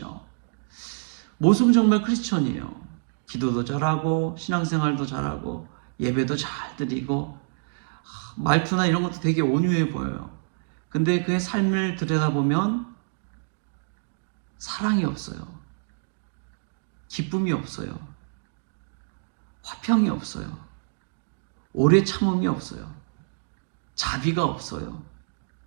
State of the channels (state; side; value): silent; left; digital silence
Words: 모습은 정말 크리스천이에요. 기도도 잘하고 신앙생활도 잘하고 예배도 잘 드리고 말투나 이런 것도 되게 온유해 보여요. 근데 그의 삶을 들여다보면 사랑이 없어요. 기쁨이 없어요. 화평이 없어요. 오래 참음이 없어요. 자비가 없어요.